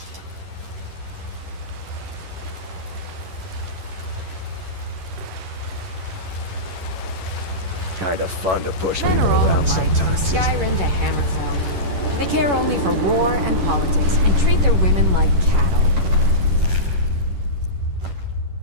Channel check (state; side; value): late; left; 11 ms